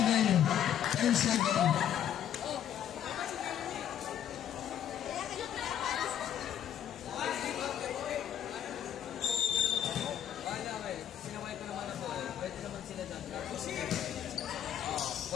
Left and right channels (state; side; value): quieter; right; 10.1 dB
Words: 10-7. Sinaway ko naman ako. Pwede naman sila dyan.